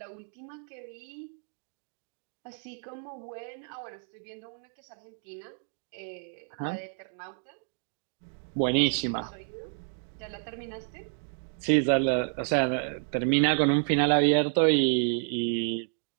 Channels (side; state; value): left; silent; 58 dB below the other